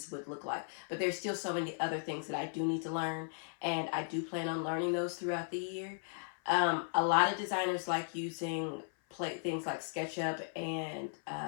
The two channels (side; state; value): right; silent; 53 dB below the other